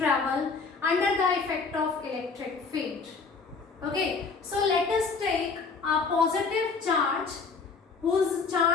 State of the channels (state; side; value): quieter; right; 4.7 dB